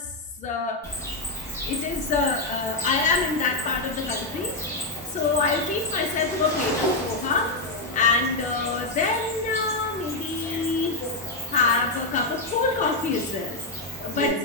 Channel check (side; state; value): right; quieter; 3.0 dB